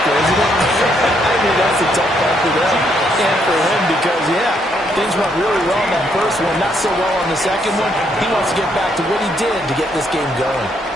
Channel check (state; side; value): normal; both; correlation 0.73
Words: isn't it? I mean, that's a tough one for them and for him because, yeah, things went really well in that first one, not so well on the second one. He wants to get back to what he did to get this game going.